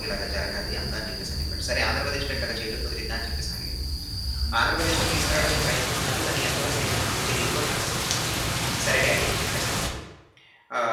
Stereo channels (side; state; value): both; identical; correlation 1.00